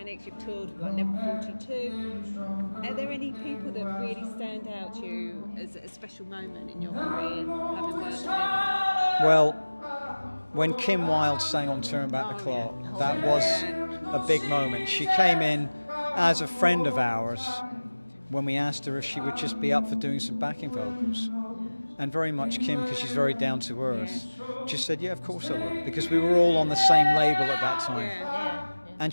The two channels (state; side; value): inverted; both; correlation -1.00